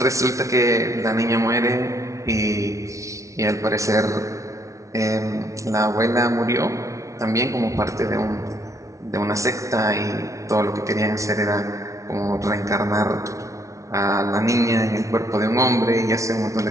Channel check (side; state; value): left; late; 0.15 ms